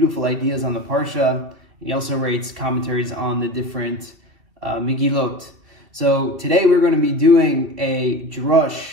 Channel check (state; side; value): late; left; 2.7 ms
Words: ideas on the Parsha. He also writes commentaries on the different Megillot. So today we're going to be doing a